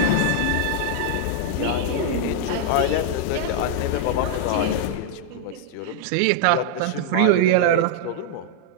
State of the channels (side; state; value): both; different; correlation -0.01